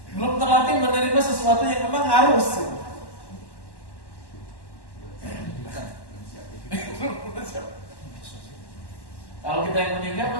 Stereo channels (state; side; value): late; right; 1.1 ms